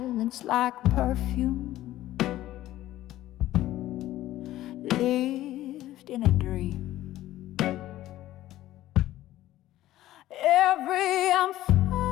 like perfume, lived in a dream. Every I'm fine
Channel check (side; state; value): right; quieter; 14.7 dB